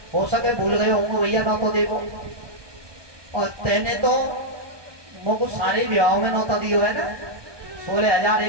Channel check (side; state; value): left; late; 1.2 ms